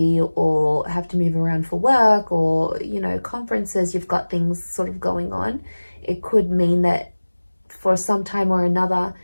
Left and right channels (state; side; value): inverted; both; correlation -1.00